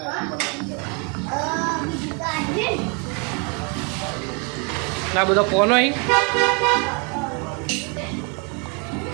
ના બધા ફોન અહીં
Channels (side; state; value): left; quieter; 32.4 dB